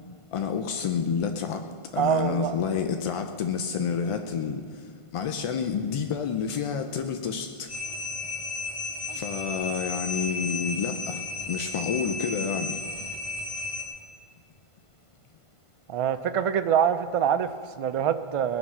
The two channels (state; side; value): late; right; 1.5 ms